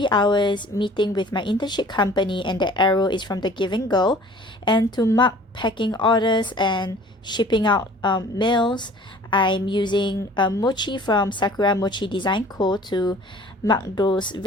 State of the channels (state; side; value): normal; both; correlation 0.49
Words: hours meeting with my internship company, and the arrow is from the Giving Girl. And to mark packing orders and shipping out mails, I'm using Mochi from SAKURAMOCHIDESIGNCO to mark those